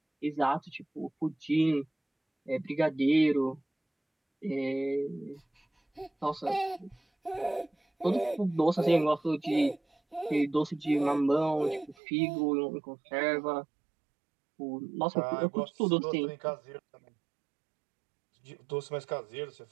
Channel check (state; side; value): drops out; left; at 12.0 s